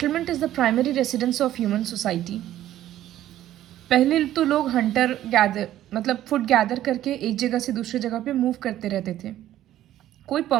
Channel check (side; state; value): left; quieter; 12.9 dB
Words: is the primary residence of human society. पहले तो लोग हंटर गैदर मतलब फूड गैदर करके एक जगह से दूसरी जगह पे मूव करते रहते थे. कोई